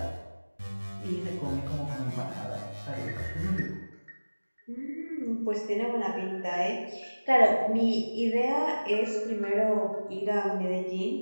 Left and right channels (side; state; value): both; inverted; correlation -1.00